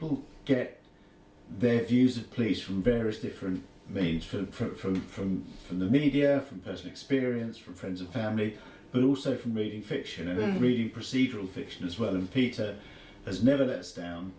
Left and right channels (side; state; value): both; identical; correlation 1.00